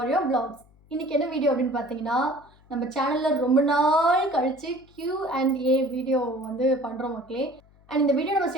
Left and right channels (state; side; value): noise; left; hum, 29 dB below the sound